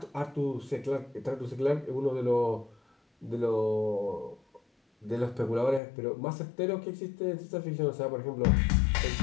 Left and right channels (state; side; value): drops out; right; at 5.8 s